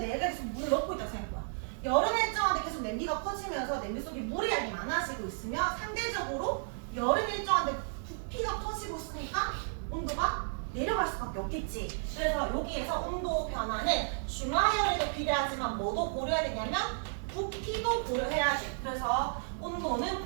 계속 물을 넣고 있다고 생각해봐. 열은 일정한데 계속 냄비가 커지면서 냄비 속에 물의 양이 많아지고 있으면 상대적으로 열은 일정한데 부피가 커지고 있으니까 온도가 내려갈 수밖에 없겠지. 그래서 여기에서 온도 변화는 중화열에도 비례하지만 뭐도 고려해야 되냐면 부피도 고려해야지. 그래서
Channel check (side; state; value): left; silent; digital silence